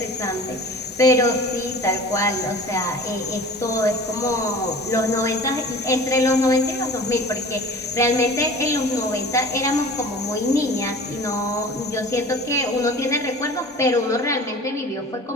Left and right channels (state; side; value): normal; both; correlation 0.41